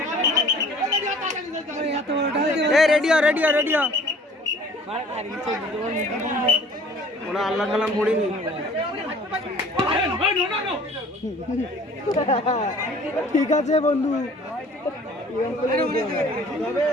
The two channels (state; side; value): normal; both; correlation 0.51